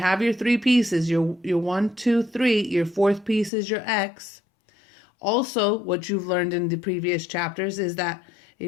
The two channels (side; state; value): right; drops out; at 3.5 s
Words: your 3 pieces, your 1, 2, 3, your 4th piece is your X. Also, what you've learned in the previous chapters is that